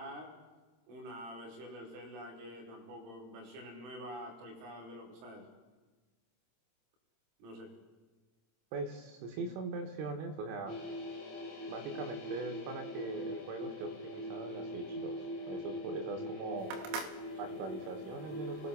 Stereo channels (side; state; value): left; late; 26 ms